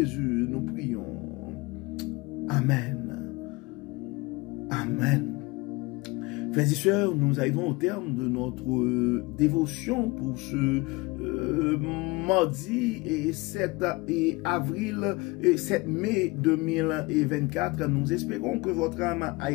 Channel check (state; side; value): quieter; right; 24.4 dB